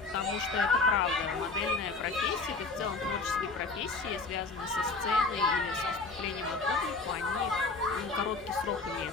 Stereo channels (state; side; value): quieter; right; 3.8 dB